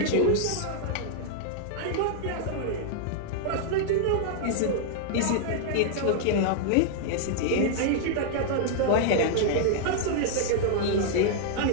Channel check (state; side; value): different; both; correlation -0.01